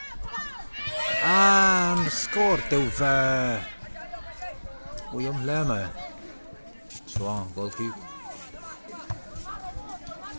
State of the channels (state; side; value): inverted; both; correlation -1.00